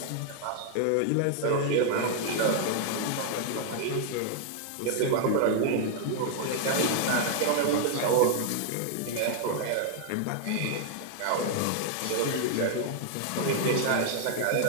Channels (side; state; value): both; different; correlation 0.00